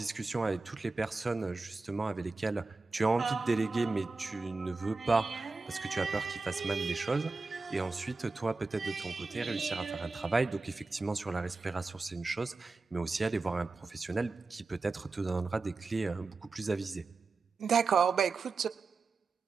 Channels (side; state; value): left; quieter; 3.9 dB